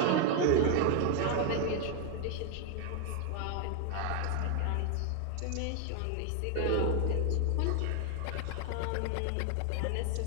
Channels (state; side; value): different; both; correlation 0.01